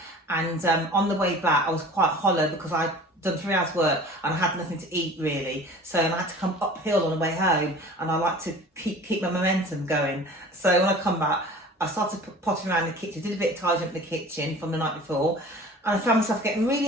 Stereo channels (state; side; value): normal; both; correlation 0.43